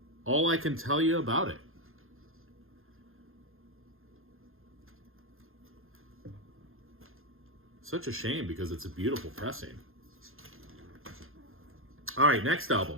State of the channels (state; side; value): late; left; 0.60 ms